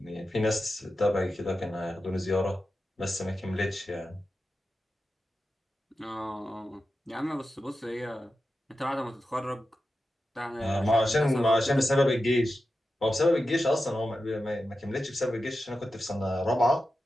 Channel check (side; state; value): both; normal; correlation 0.91